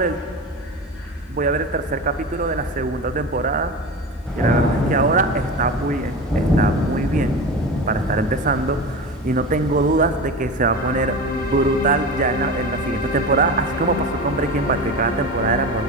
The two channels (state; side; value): normal; both; correlation 0.27